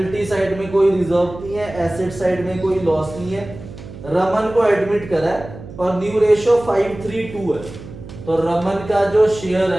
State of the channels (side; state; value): right; noise; hum, 14 dB below the sound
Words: साइड में कोई रिजर्व नहीं है, एसेट साइड में कोई लॉस नहीं है। रमन को एडमिट करा है और न्यू रेशियो 5:3:2 है। तो रमन का जो शेयर